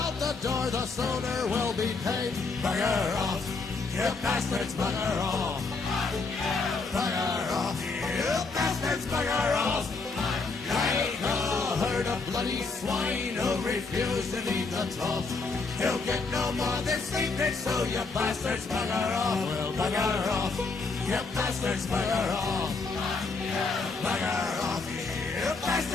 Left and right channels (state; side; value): quieter; right; 4.1 dB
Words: out the door, the sooner we'll be paid. Bugger off, you bastards, bugger off. Bugger off, you bastards, bugger off. Like a herd of bloody swine who refuse to leave the trough. You'll get no more this evening, so you bastards bugger off. Well, bugger off, you bastards bugger off. Bugger off, you